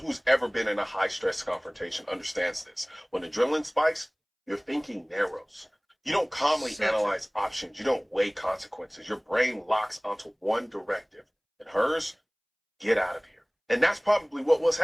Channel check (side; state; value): both; identical; correlation 1.00